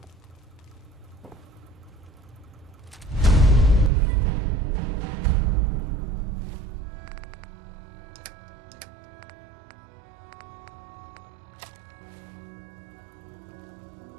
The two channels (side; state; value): left; drops out; at 3.9 s